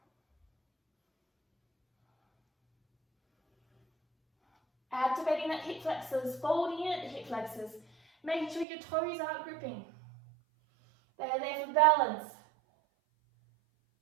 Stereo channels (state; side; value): drops out; left; at 8.7 s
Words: Activating that hip flexors, folding in at the hip flexors, making sure your toes aren't gripping. They're there for balance.